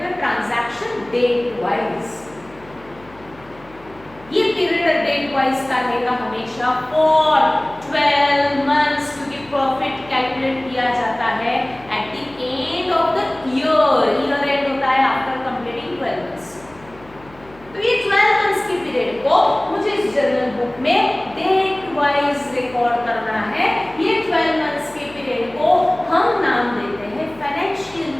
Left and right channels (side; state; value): left; noise; hum, 24 dB below the sound